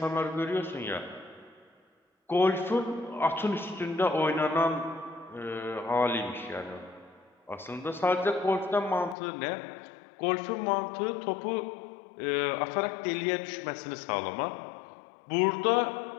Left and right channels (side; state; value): right; drops out; at 9.2 s